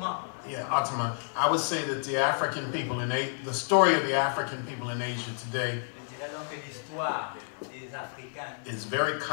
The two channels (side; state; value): right; silent; 58 dB below the other